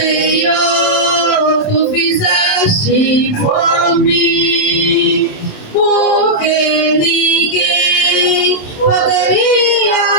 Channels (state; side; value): late; right; 27 ms